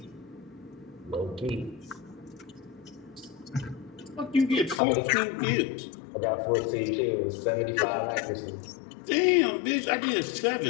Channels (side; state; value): right; drops out; at 4.8 s